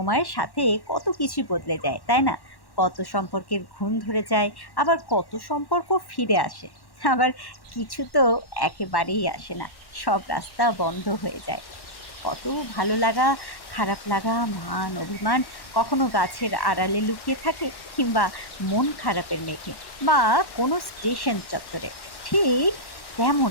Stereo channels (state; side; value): late; right; 1.1 ms